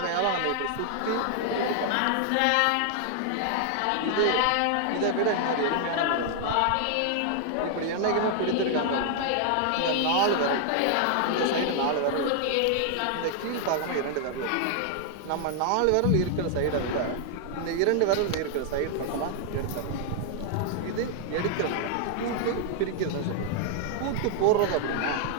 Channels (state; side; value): different; both; correlation 0.00